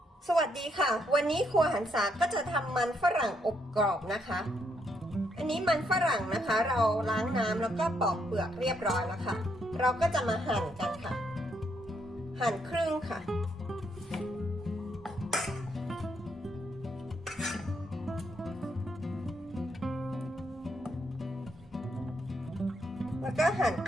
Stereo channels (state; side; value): normal; both; correlation 0.76